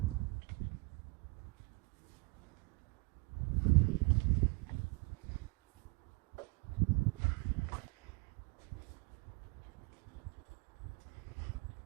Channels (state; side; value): quieter; left; 27.3 dB